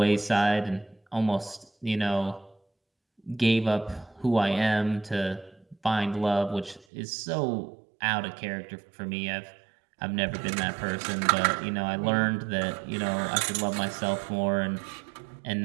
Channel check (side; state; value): left; drops out; at 6.9 s